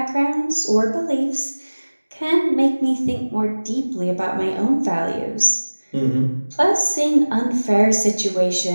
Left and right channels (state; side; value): inverted; both; correlation -1.00